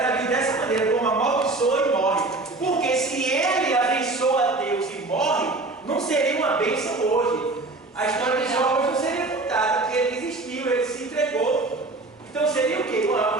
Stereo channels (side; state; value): left; quieter; 3.2 dB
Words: dessa maneira, como amaldiçoa e morre. Porque se ele abençoa Deus e morre, não seria uma bênção hoje. A história de Jó hoje não seria contada, porque ele desistiu, ele se entregou. Então seria o quê?